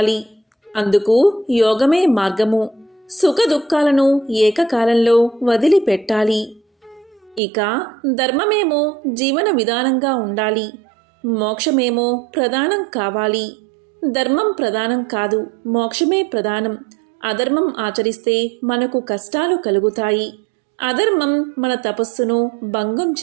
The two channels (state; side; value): drops out; left; at 7.4 s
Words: అందుకు యోగమే మార్గము. సుఖదుఖాలను ఏకకాలంలో వదిలిపెట్టాలి. ఇక ధర్మమేమో జీవన విధానంగా ఉండాలి, మోక్షమేమో ప్రధానం కావాలి. ధర్మం ప్రధానం కాదు, మోక్షమే ప్రధానం. అధర్మం ఆచరిస్తే మనకు కష్టాలు కలుగుతాయి. అధర్మం మన తపస్సును భంగం